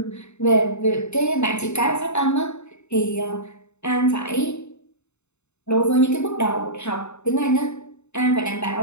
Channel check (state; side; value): late; right; 0.82 ms